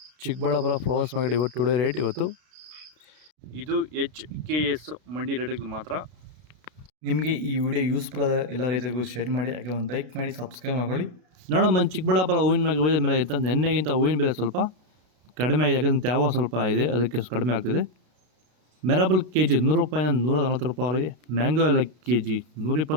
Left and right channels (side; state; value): left; late; 33 ms